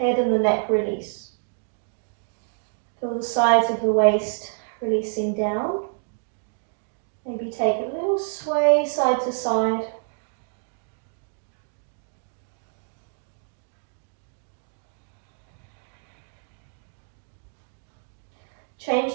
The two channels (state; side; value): silent; left; 60 dB below the other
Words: and the neck release. Feel the sides of the waist releasing down. Maybe take a little sway side to side. Change